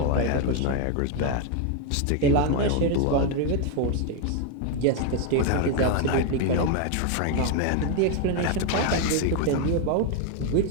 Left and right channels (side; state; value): both; different; correlation 0.01